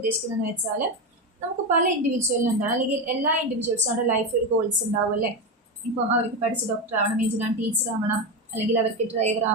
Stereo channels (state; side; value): normal; both; correlation 0.14